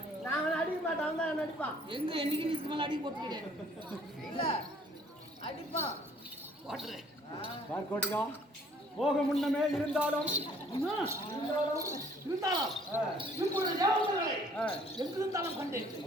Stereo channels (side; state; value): both; normal; correlation 0.58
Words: நான் அடிக்க மாட்டேன், அவன் தான் என்ன அடிப்பான். எங்க என்னைக்கு இதுக்கு மேல அடி போட்டு கிடையாது இல்ல அடிப்பான் போட்டுறேன் பார்க்கோட்டியா போக முன்னமே இருந்தாலும் இருந்தாலும் இப்பொழுது தேவதர்களை எங்கிருந்தாலும் கண்டு